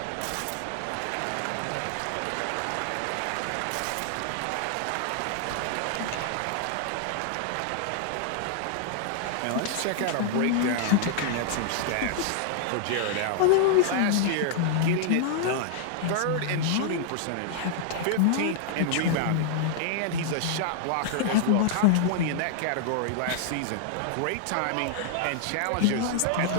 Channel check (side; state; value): both; different; correlation -0.01